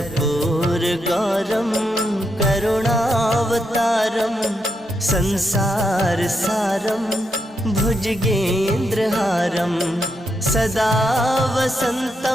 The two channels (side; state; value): both; normal; correlation 0.82